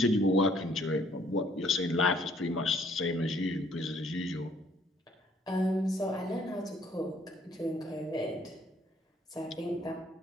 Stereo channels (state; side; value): normal; both; correlation 0.63